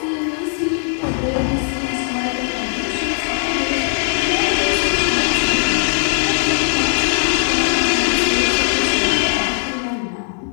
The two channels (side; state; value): right; silent; 56 dB below the other